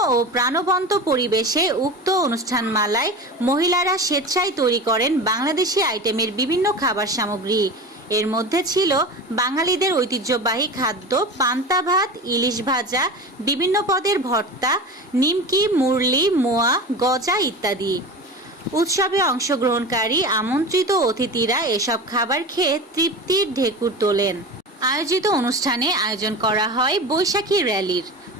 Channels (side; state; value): both; normal; correlation 0.30